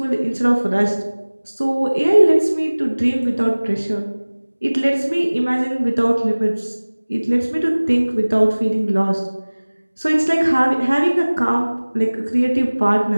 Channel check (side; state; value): both; inverted; correlation -1.00